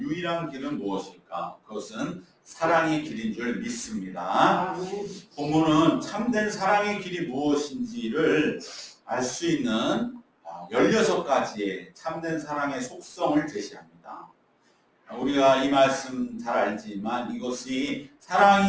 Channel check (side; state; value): both; identical; correlation 1.00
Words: 길은 무엇일까? 그것은 사랑의 길인 줄 믿습니다. 본문은 참된 사랑의 길이 무엇인지를 알 수 있는 16가지의 참된 사랑의 속성을 제시합니다. 우리가 이 말씀 잘 알지만 이것이